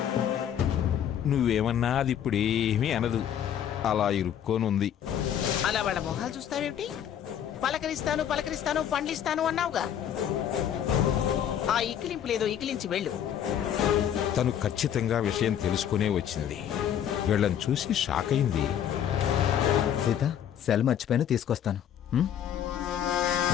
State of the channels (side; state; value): right; quieter; 9.6 dB